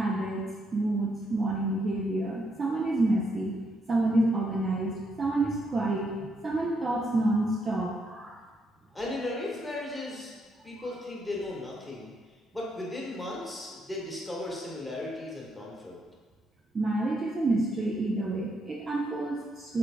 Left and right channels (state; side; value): normal; both; correlation 0.77